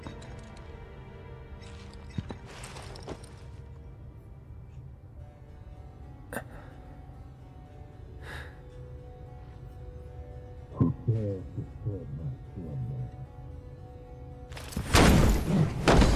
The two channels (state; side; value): identical; both; correlation 1.00